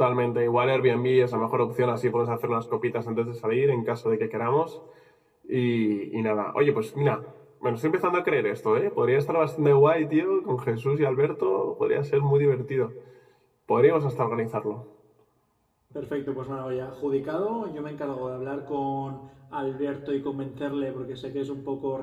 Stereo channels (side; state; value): both; identical; correlation 1.00